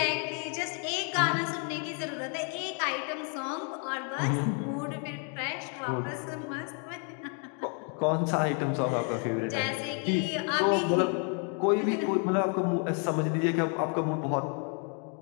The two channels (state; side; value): quieter; right; 39.9 dB